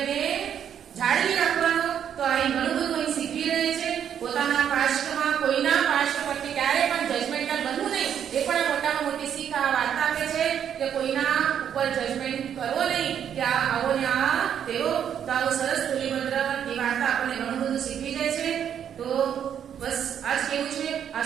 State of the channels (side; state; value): left; quieter; 8.9 dB